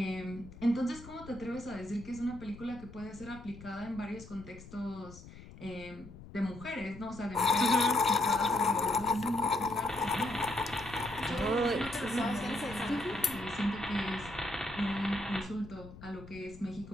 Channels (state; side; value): noise; left; rumble, 16 dB below the sound